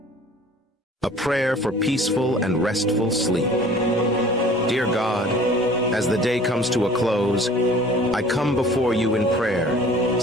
A prayer for peaceful and restful sleep. Dear God, as the day comes to a close, I come before you in prayer,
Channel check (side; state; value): both; normal; correlation 0.48